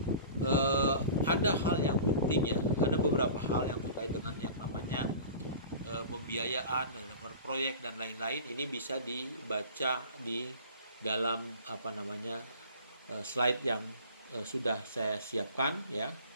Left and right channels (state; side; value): inverted; both; correlation -0.40